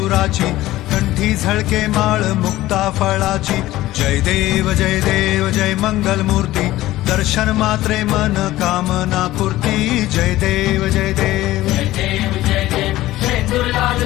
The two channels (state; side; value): quieter; right; 16.1 dB